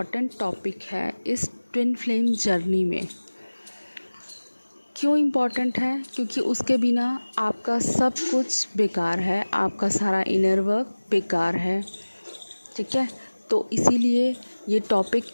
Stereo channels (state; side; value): inverted; both; correlation -1.00